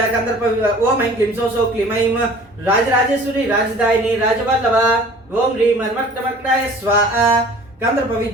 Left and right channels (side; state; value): both; normal; correlation 0.47